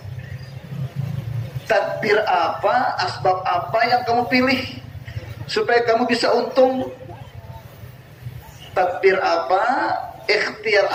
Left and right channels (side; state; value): both; identical; correlation 1.00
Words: Tadbir apa, asbab apa yang kamu pilih supaya kamu bisa untung? Tadbir apa, ikhtiar